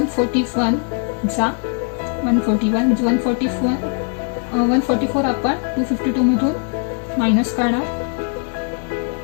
जा 141 म्हणजे 144 आपण 252 मधून मायनस काढणार,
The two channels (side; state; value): right; quieter; 40.0 dB